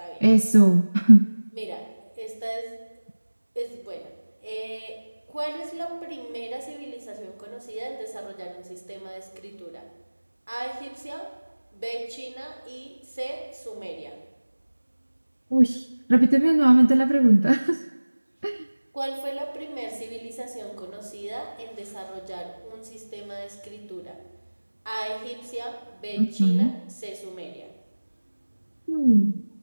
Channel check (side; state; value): both; inverted; correlation -1.00